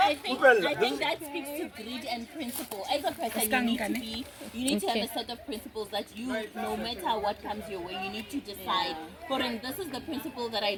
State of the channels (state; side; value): identical; both; correlation 1.00